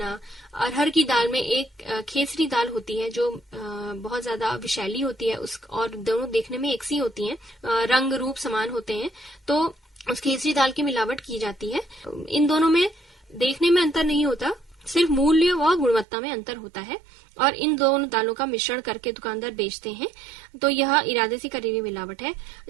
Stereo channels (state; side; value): drops out; left; at 16.1 s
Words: अरहर की दाल में एक खेसरी दाल होती है जो बहुत ज्यादा विषैली होती है और दोनों देखने में एक सी होती हैं, रंग रूप समान होते हैं, तो उस खेसरी दाल की मिलावट की जाती है। इन दोनों में देखने में अंतर नहीं होता, सिर्फ मूल्य व गुणवत्ता में अंतर होता है और इन दोनों दालों का मिश्रण करके दुकानदार बेचते हैं। तो यह इरादे से करी हुई मिलावट है।